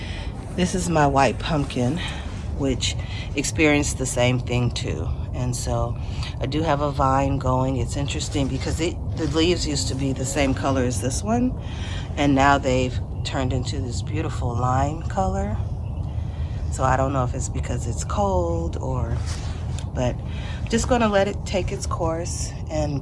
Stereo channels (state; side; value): identical; both; correlation 1.00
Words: This is my white pumpkin, which experienced the same thing too. And so I do have a vine going. It's interesting because the leaves used to be the same color as this one, and now they've turned into this beautiful lime color. So I don't know if it's because it's cold but just gonna let it take its course and